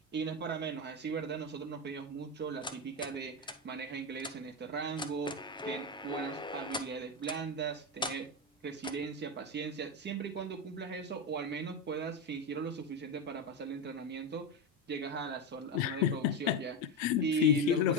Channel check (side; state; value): both; normal; correlation 0.13